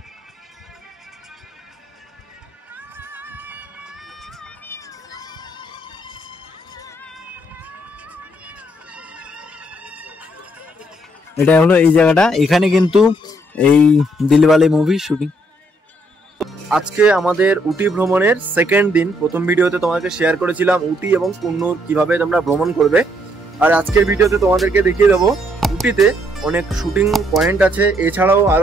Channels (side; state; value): both; normal; correlation 0.71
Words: এটা হলো এই জায়গাটা, এখানে কিন্তু এই দিলওয়ালে মুভি শুটিং। আজকে আমাদের উটি ভ্রমণের সেকেন্ড দিন। প্রথম ভিডিওতে তোমাকে শেয়ার করেছিলাম উটি এবং কুন্নুর কিভাবে তোমরা ভ্রমণ করবে, আর আজকের ভিডিওতে তোমাদেরকে দেখিয়ে দেবো উটিতে অনেক শুটিং পয়েন্ট আছে, এছাড়াও